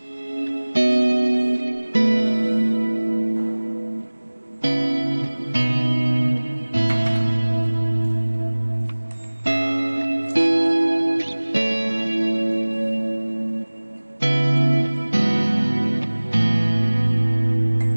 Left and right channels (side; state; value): both; inverted; correlation -1.00